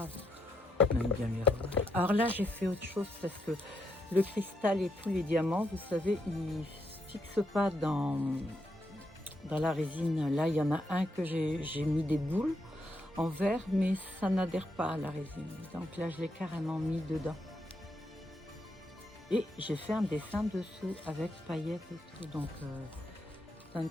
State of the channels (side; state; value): both; normal; correlation 0.80